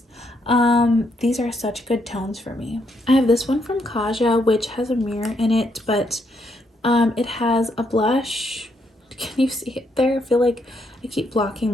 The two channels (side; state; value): both; normal; correlation 0.76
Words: These are such good tones for me. I have this one from Kaja, which has a mirror in it, but it has a blush. Can you see it there? I feel like I keep